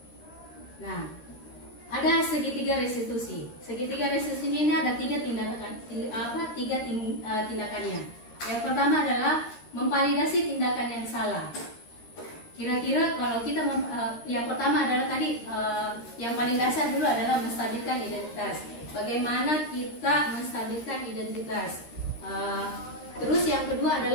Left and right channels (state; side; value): late; right; 13 ms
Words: Nah, ada segitiga restitusi. Segitiga restitusi ini ada 3 tindakannya. Yang pertama adalah memvalidasi tindakan yang salah. kira-kira kalau kita yang pertama adalah tadi yang paling dasar dulu adalah menstabilkan identitas. Bagaimana kita menstabilkan identitas? Terus yang kedua